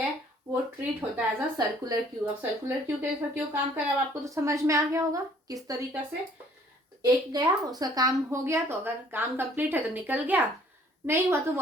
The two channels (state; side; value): normal; both; correlation 0.58